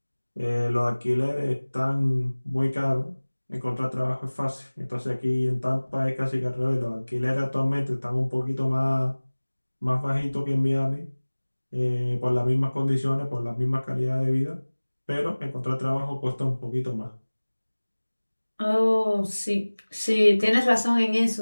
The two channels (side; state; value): both; inverted; correlation -1.00